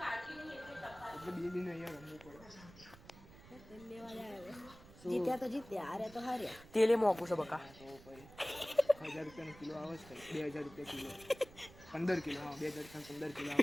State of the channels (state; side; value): noise; right; rumble, 19 dB below the sound